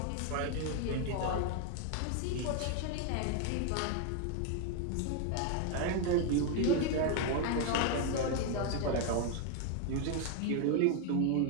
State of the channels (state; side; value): different; both; correlation 0.01